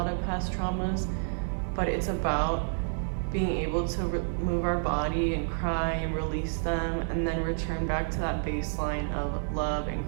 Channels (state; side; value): silent; left; digital silence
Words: of past traumas. But it's about being able to move our body and cry and release them, and then return back to that baseline of love and